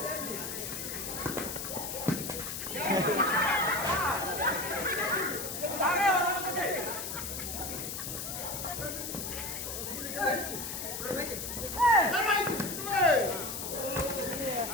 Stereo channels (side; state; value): left; noise; hiss, 5 dB below the sound